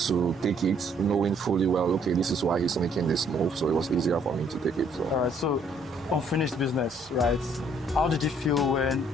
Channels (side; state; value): both; normal; correlation 0.64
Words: take it, knowing fully well, okay, this is why he's making this move. So it was easier for me to take it. So. All right, so unfinished business, right? How did you feel when